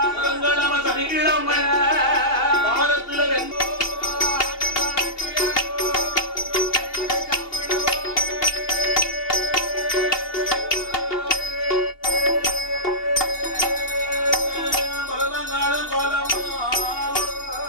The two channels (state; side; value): late; right; 2.8 ms